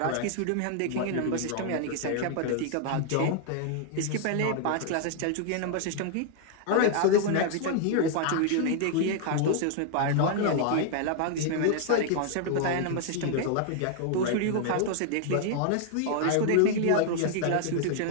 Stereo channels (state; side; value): different; both; correlation 0.00